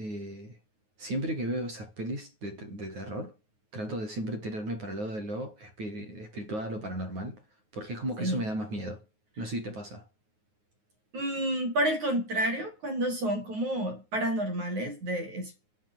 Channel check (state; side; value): late; left; 9.5 ms